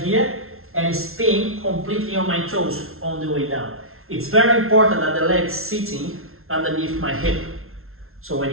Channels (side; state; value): left; late; 0.62 ms